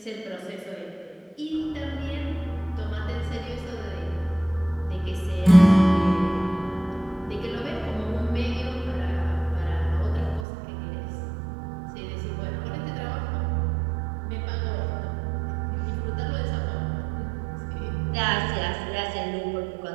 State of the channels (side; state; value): left; drops out; at 10.5 s